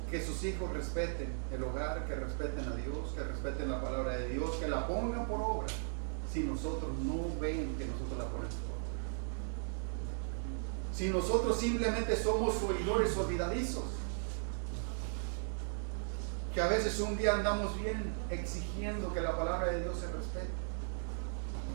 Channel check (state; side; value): silent; left; digital silence